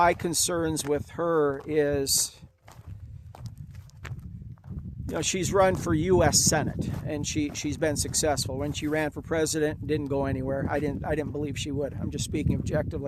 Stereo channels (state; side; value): identical; both; correlation 1.00